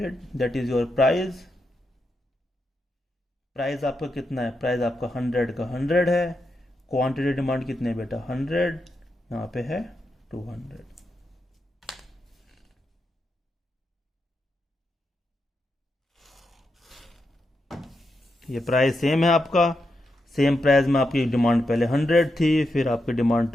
that is your price. Price आपका कितना है, प्राइस आपका 100 का 100 है। क्वांटिटी डिमांड कितने है बेटा 100, यहाँ पे है 200। ये प्राइस सेम है आपका, सेम प्राइस में आपकी डिमांड पहले 100 थी, फिर आपकी डिमांड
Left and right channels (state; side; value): normal; both; correlation 0.85